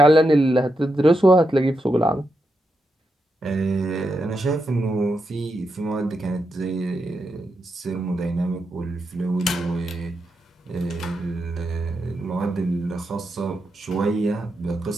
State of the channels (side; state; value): both; normal; correlation 0.85